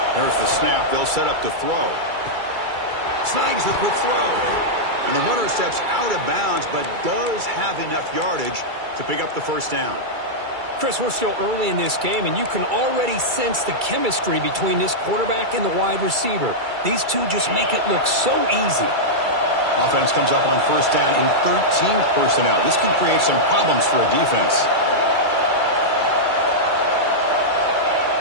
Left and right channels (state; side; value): late; left; 2.3 ms